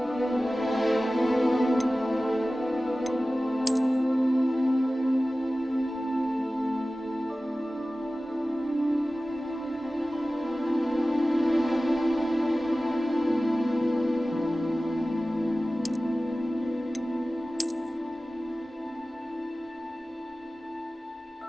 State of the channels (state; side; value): normal; both; correlation 0.96